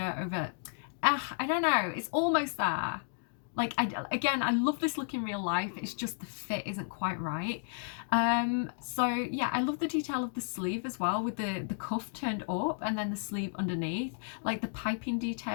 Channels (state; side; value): silent; right; digital silence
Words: over. I don't know, it's almost there. Like, again, I love this look in real life, it's just the fit isn't quite right. So yeah, I love the detail of the sleeve as well, with the cuff turned up and then the sleeve underneath, like the piping